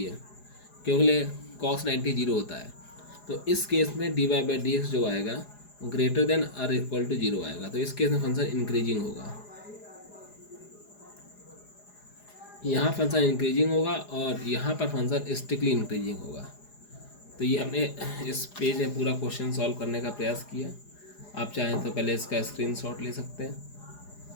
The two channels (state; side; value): late; right; 4.9 ms